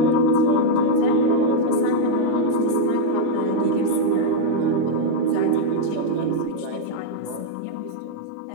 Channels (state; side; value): different; both; correlation -0.01